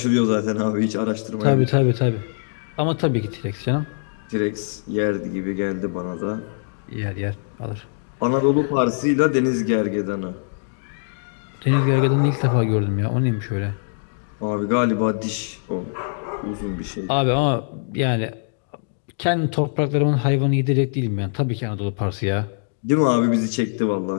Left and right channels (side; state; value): right; silent; digital silence